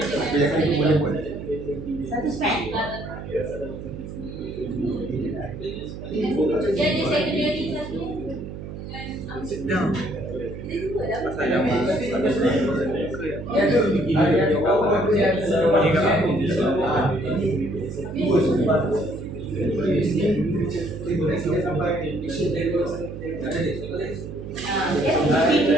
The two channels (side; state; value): right; noise; hum, 10 dB below the sound